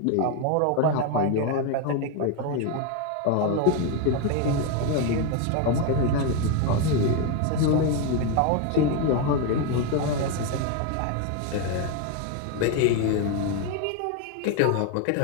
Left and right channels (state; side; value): different; both; correlation 0.02